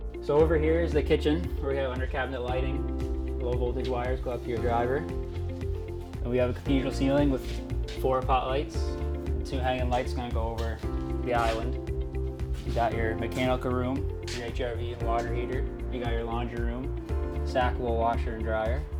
So over here is the kitchen where we have under cabinet lighting. Low voltage wires go up to your driver. And we have a cathedral ceiling with 4 pot lights, and 2 hanging lights going to go over the island. You got your mechanical room, your HRV and water heater. You got your laundry room, stackable washer and dryer.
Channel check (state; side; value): identical; both; correlation 1.00